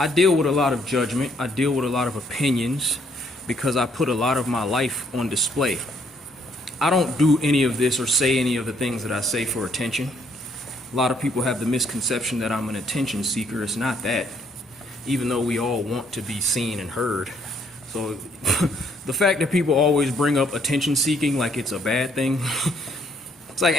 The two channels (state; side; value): normal; both; correlation 0.68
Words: I deal with a lot of judgment, I deal with a lot of opinions because I put a lot of my life on display. I don't do any of this or say any of the things that I say for attention. A lot of people have the misconception that I'm an attention seeker. It's not that, even though we all want to be seen and heard. So the fact that people always bring up attention seeking like it's a bad thing, it's like,